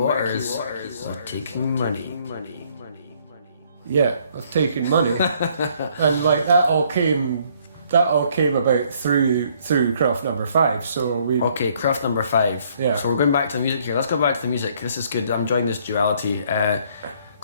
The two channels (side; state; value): both; inverted; correlation -0.64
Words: of taking money. Yeah, of taking money. And like that all came about through craft number 5. So we craft number 5. Yeah. So we're going back to the music here. Let's go back to the music. This is good. I'm enjoying this duality.